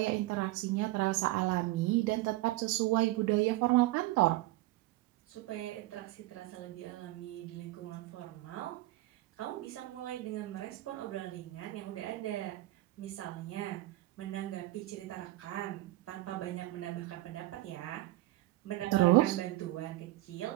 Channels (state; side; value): quieter; left; 18.1 dB